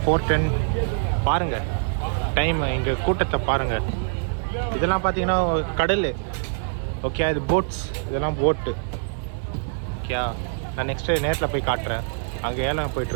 4:10 பாருங்கள் டைம். இங்கே கூட்டத்தை பாருங்கள். இதெல்லாம் பார்த்தீங்கன்னா கடல். ஓகே, இது போட்ஸ், இதெல்லாம் போட்டு. ஓகே, நான் நெக்ஸ்ட்டு நேரில் போய் காட்டுறேன். அங்கே ஏலம்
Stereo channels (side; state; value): left; silent; 62 dB below the other